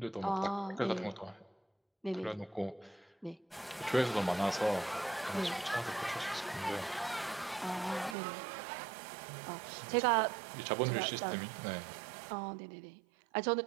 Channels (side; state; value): left; drops out; at 8.2 s